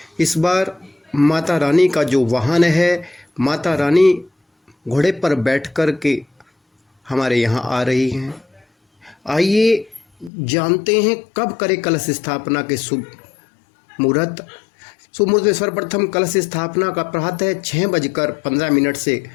इस बार माता रानी का जो वाहन है, माता रानी घोड़े पर बैठ कर के हमारे यहाँ आ रही हैं। आइए जानते हैं कब करें कलश स्थापना के शुभ मुहूर्त। शुभ मुहूर्त में सर्वप्रथम कलश स्थापना का प्रातः 6:15 से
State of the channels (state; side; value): drops out; right; at 10.3 s